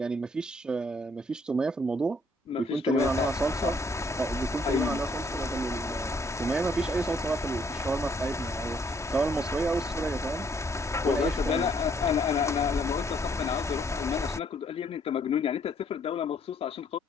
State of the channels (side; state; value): both; normal; correlation 0.67